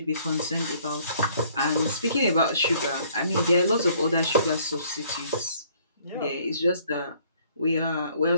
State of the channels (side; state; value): both; inverted; correlation -0.61